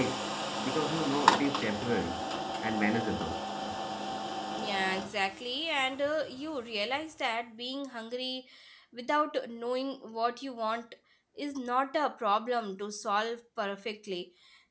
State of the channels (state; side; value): identical; both; correlation 1.00